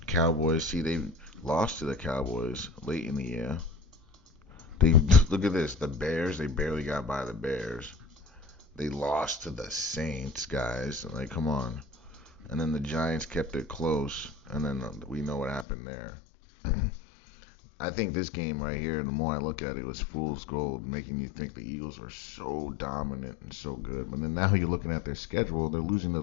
Cowboys, they lost to the Cowboys late in the year. Look at this. The Bears, they barely got by the Bears. They lost to the Saints, guys. Come on. And then the Giants kept it close, and then we know what happened there. I think this game right here, the more I look at it, was fool's gold, making you think the Eagles are so dominant and so good. But then now you're looking at their schedule, they're losing to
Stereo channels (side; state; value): right; drops out; at 15.7 s